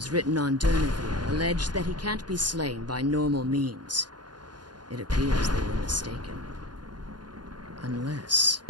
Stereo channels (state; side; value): late; left; 0.70 ms